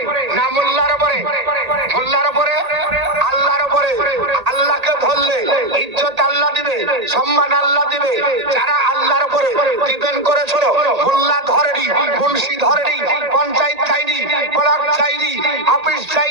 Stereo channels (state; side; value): late; left; 1.8 ms